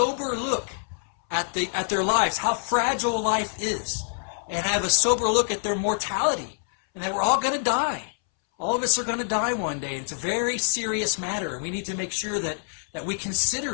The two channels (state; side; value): silent; right; 61 dB below the other